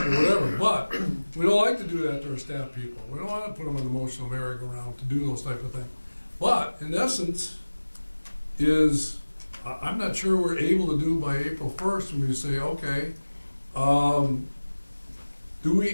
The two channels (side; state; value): both; inverted; correlation -1.00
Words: or whatever. But we don't like to do that to our staff people. We don't want to put them on the emotional merry-go-round to do those type of things. But in essence, I'm not sure we're able to do by April 1st when we say, okay, do